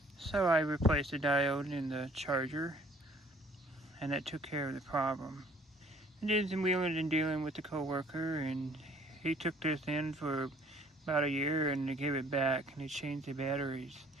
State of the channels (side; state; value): both; normal; correlation 0.57